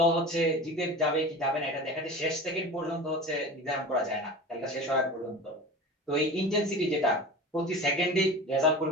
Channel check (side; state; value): both; normal; correlation 0.33